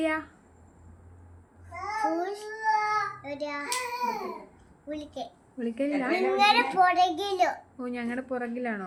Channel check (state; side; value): identical; both; correlation 1.00